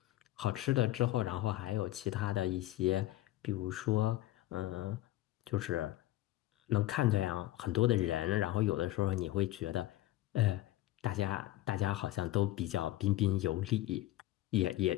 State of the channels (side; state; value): right; quieter; 15.6 dB